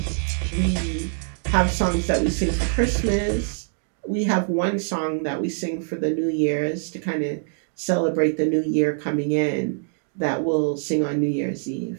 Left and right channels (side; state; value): left; silent; 63 dB below the other